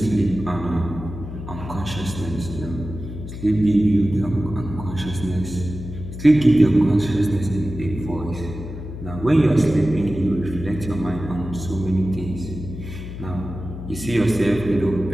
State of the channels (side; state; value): left; noise; hum, 9 dB below the sound